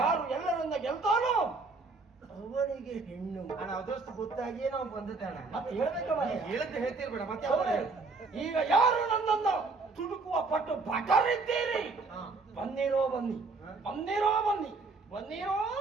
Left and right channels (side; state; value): left; quieter; 3.9 dB